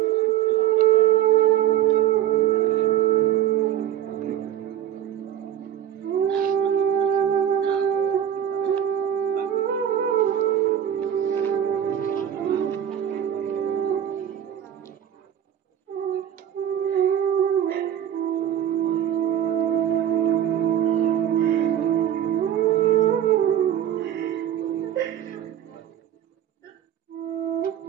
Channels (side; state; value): left; quieter; 10.7 dB